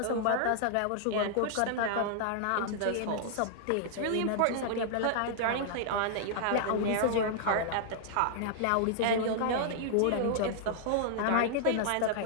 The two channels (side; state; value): both; different; correlation -0.01